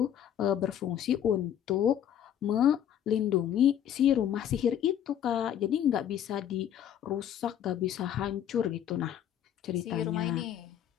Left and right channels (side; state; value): right; quieter; 10.0 dB